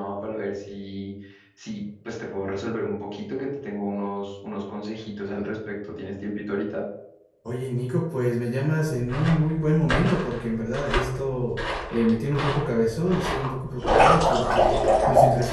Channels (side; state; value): both; identical; correlation 1.00